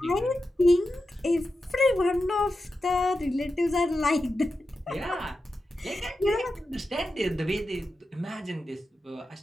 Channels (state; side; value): normal; both; correlation 0.91